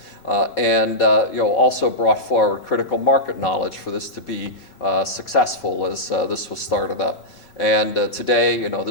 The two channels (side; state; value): right; late; 5.3 ms